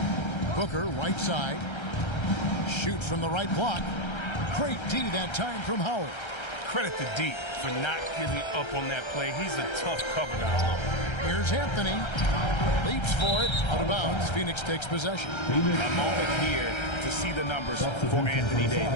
Booker, right side. Shoots from the right block. Great D that time from Howard. Credit to D for not giving up on that play. He's a tough cover now. Here's Anthony. Leaps for it. Out of bounds. Phoenix takes possession. A moment here to see the numbers for Anthony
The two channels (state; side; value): late; right; 1.3 ms